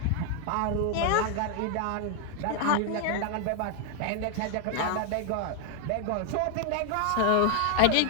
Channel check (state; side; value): different; both; correlation 0.00